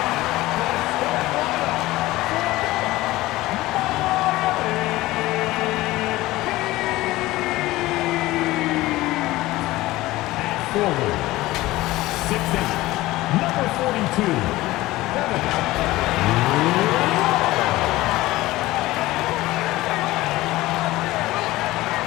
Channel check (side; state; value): right; quieter; 18.0 dB